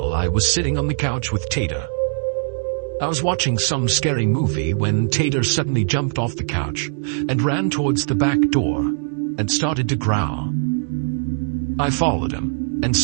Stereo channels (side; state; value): left; silent; digital silence